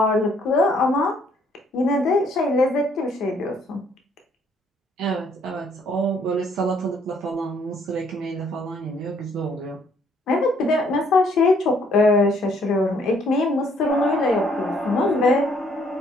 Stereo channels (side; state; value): both; normal; correlation 0.65